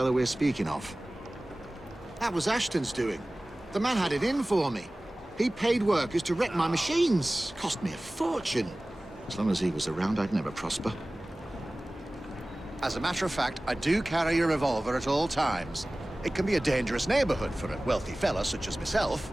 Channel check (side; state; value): both; normal; correlation 0.98